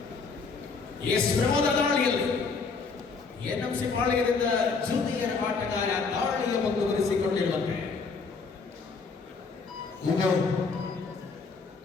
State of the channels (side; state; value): right; quieter; 4.7 dB